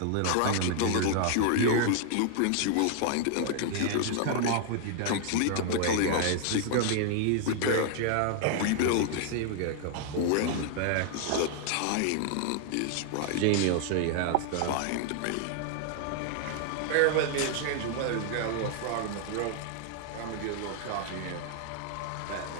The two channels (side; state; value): both; different; correlation 0.00